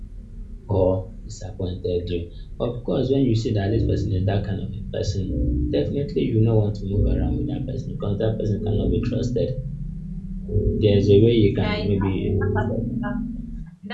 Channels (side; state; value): both; identical; correlation 1.00